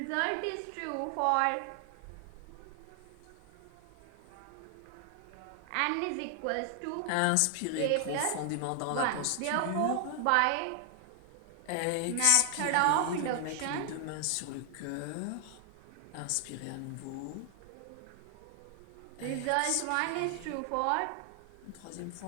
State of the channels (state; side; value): different; both; correlation 0.00